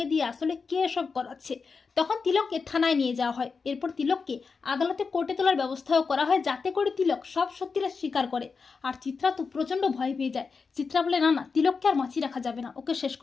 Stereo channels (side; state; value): right; quieter; 5.0 dB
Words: দিয়ে আসলে কে এসব করাচ্ছে। তখন তিলককে থানায় নিয়ে যাওয়া হয়। এরপর তিলককে আদালতে কোর্টে তোলার ব্যবস্থাও করা হয়, যাতে করে তিলক সব সত্যিটা স্বীকার করে। আর চিত্রা তো প্রচণ্ড ভয় পেয়ে যায়। চিত্রা বলে, না না, তিলককে আর বাঁচিয়ে রাখা যাবে না, ওকে শেষ